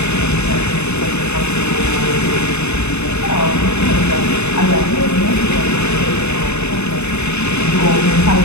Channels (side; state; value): right; late; 0.81 ms